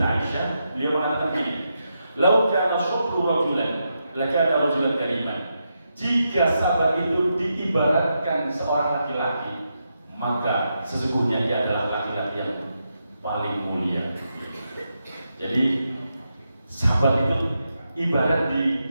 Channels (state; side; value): inverted; both; correlation -0.85